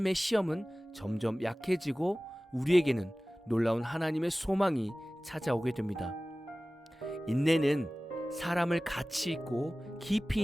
시험은 점점 약해지고 우리에게는 놀라운 하나님의 소망이 찾아오게 됩니다. 인내는 사람을 가치 있고 깊이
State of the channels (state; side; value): normal; both; correlation 0.98